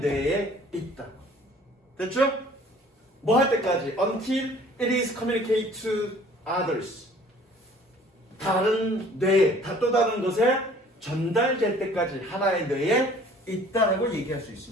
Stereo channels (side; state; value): both; normal; correlation 0.53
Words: 있다. 됐죠? 뭐 할 때까지? Until it is communicated to others. 다른 뇌, 또 다른 것에 전달될 때까지 하나의 뇌에 있다라고 얘기할 수